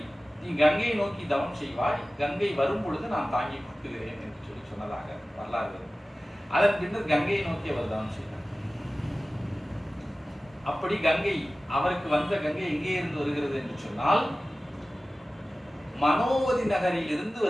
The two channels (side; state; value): both; normal; correlation 0.96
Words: நீ கங்கையை நோக்கி தவம் செய்வாய், கங்கை வரும் பொழுது நான் தாங்கி கொடுக்குகிறேன் என்று சொல்லி சொன்னதாக வரலாறு. அதன் பின்னர் கங்கையை நோக்கி அவர் தவம் செய்தார். அப்படி கங்கை அவருக்கு வந்த கங்கை எங்கே இருந்து வருகிறது என்று சொன்னால் மனோவதி நகரில் இருந்து